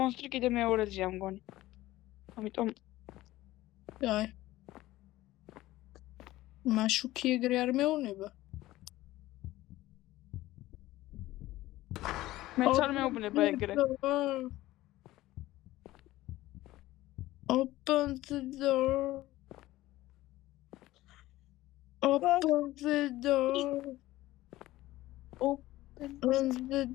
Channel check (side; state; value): right; quieter; 16.7 dB